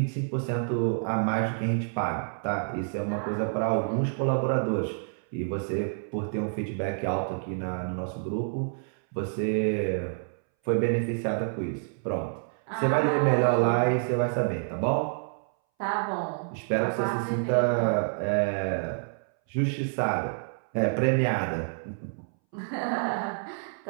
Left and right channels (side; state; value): left; silent; 59 dB below the other